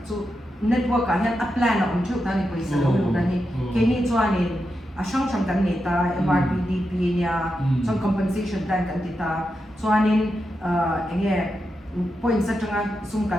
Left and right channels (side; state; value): both; normal; correlation 0.87